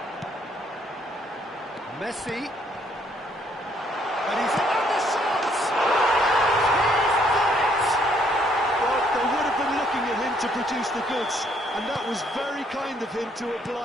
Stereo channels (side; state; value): both; normal; correlation 0.67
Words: Messi. And he's in the shots! He's done it! Well, they would have been looking at him to produce the goods, and that was very kind of him to